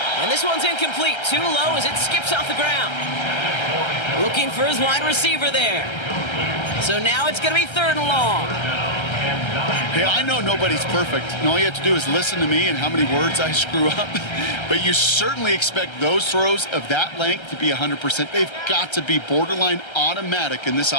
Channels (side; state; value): right; late; 1.3 ms